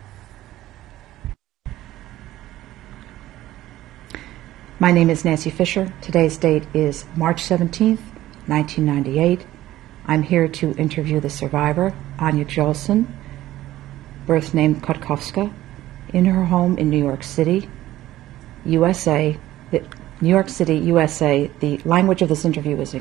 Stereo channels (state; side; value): quieter; left; 14.9 dB